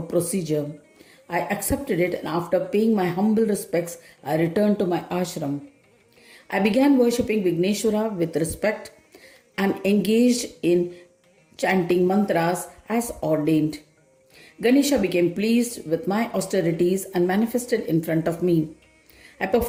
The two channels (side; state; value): both; identical; correlation 1.00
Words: procedure. I accepted it and after paying my humble respects, I returned to my ashram. I began worshipping Vigneshwara with respect and engaged in chanting mantras as ordained. Ganesha became pleased with my austerities and manifested in front of me. I